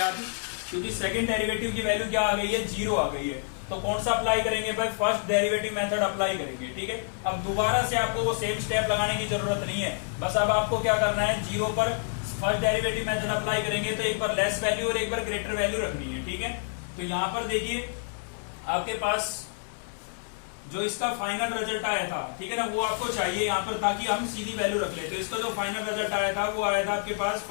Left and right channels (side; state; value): right; silent; 59 dB below the other